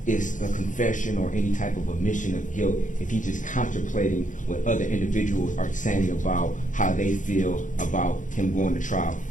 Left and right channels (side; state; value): right; late; 0.37 ms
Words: is a confession or any type of admission of guilt if he's just contemplating what other individuals are saying about how they feel about him going to trial.